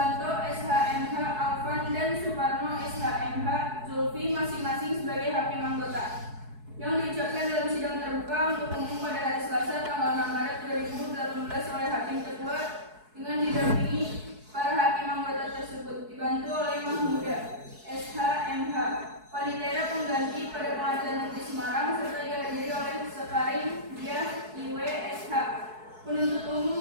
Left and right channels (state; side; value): late; left; 4.7 ms